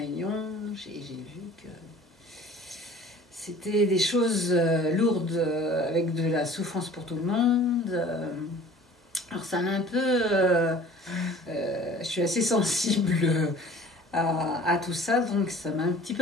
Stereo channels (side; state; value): both; normal; correlation 0.47